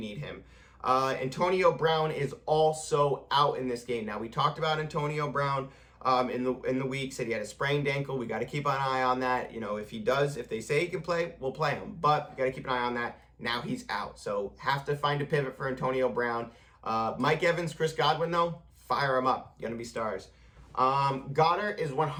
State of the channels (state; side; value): identical; both; correlation 1.00